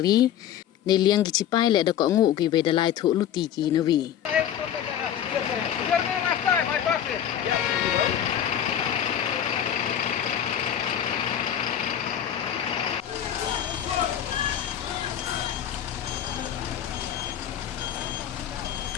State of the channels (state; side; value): quieter; right; 10.0 dB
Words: ne liang ki chipai le da ko ngu ki we dalai thu luti ki na wi